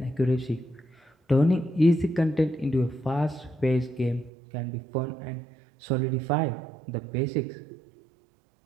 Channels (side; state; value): left; drops out; at 4.3 s